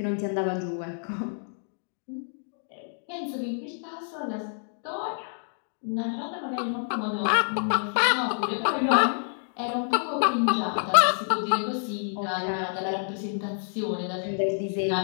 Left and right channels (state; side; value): silent; right; 59 dB below the other